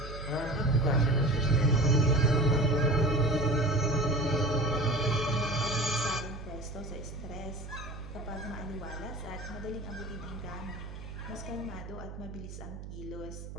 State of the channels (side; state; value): right; noise; hum, 11 dB below the sound